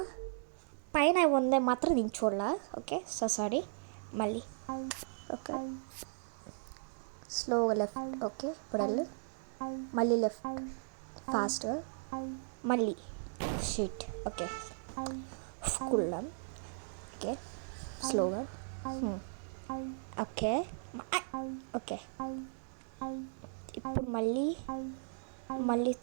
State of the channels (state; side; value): silent; left; digital silence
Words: పైన ఉందే మాత్రం నేను చూడాల. Okay so sorry. మళ్ళీ ఓకే స్లోగా లెఫ్ట్. ఓకే ఇప్పుడు వెళ్ళు మళ్ళీ లెఫ్ట్ ఫాస్ట్గా మళ్ళీ షీట్. ఓకే కూల్ ఓకే స్లోగా ఓకే ఓకే ఇప్పుడు మళ్ళీ